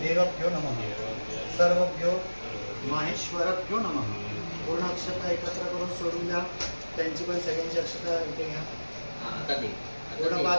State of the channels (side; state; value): both; inverted; correlation -1.00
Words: देवभ्यो नमः सर्वभ्यो माहेश्वरभ्यो नमः पूर्ण अक्षता एकत्र करून सोडून द्या त्यांची पण सगळ्यांची अक्षता इथे घ्या पूर्ण